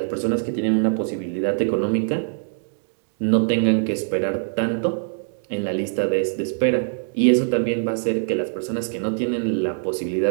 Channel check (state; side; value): silent; left; digital silence